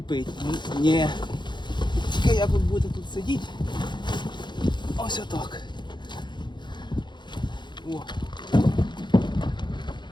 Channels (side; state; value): right; late; 0.22 ms